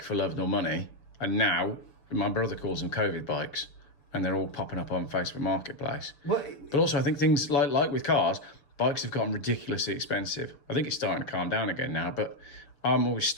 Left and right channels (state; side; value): late; right; 6.9 ms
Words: for love nor money. And now, my brother calls them COVID bikes and they're all popping up on Facebook Marketplace. But also I think things like with cars, bikes have gotten ridiculously expensive. I think it's starting to calm down again now, but I'm always